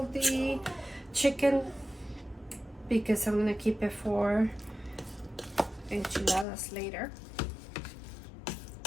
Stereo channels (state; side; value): drops out; right; at 6.5 s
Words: the chicken because I'm gonna keep it for enchiladas later.